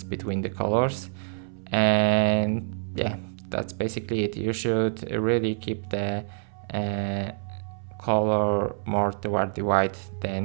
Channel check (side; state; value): left; silent; 60 dB below the other